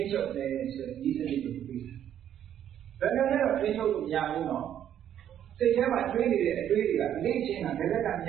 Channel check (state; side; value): quieter; left; 10.3 dB